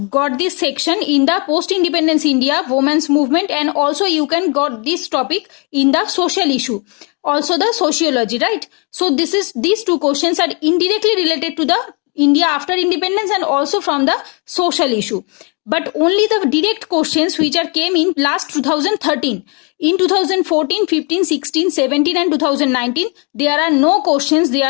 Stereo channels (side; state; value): right; quieter; 34.2 dB